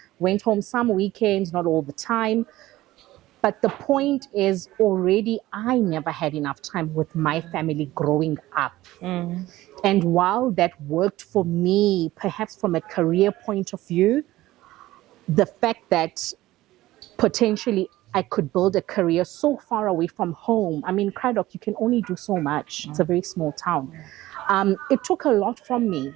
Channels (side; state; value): left; quieter; 16.6 dB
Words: Went home some weekends, not all the time. But the point is already I never had enough time with my family growing up. And while that worked for me, perhaps from a career point of view, the fact that potentially I could build a career so far away from home. I mean, Craddock, you can only do so much. It's a very small town. It took a lot from me